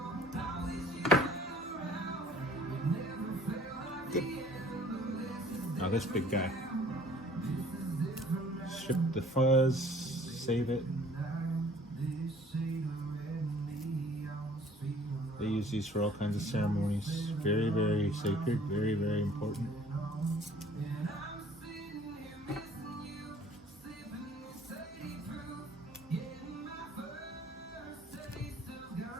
Good. Now this big guy. Strip the fuzz, save it. They use these for all kinds of ceremonies. Very, very sacred, very, very important.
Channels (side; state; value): both; normal; correlation 0.54